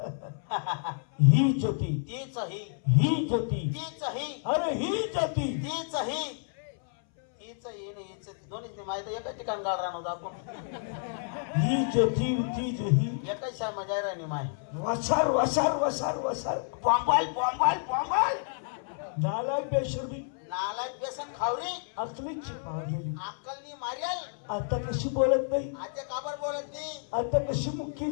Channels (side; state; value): right; silent; 58 dB below the other